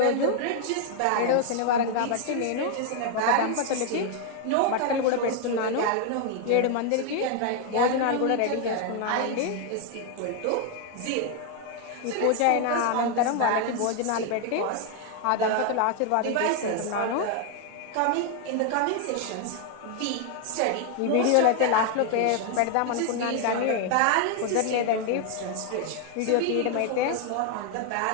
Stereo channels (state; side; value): different; both; correlation 0.00